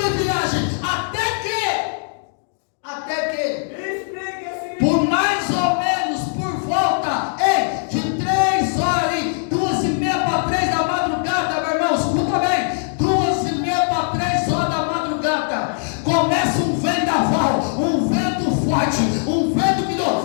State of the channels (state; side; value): silent; right; digital silence